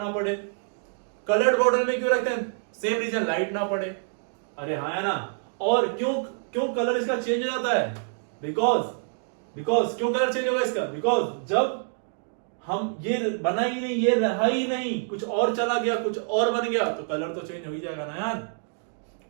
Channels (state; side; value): silent; left; digital silence